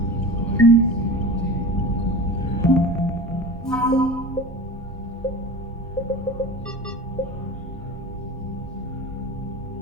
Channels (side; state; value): both; normal; correlation 0.33